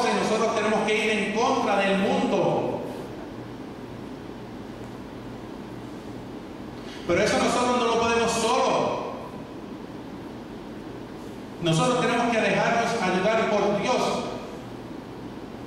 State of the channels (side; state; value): both; identical; correlation 1.00